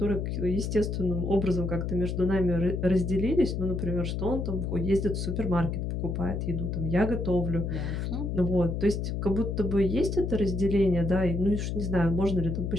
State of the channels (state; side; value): noise; left; hum, 2 dB below the sound